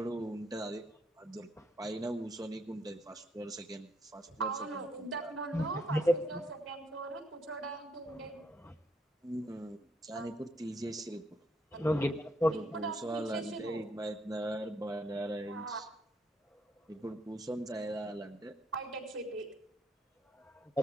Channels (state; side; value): normal; both; correlation 0.72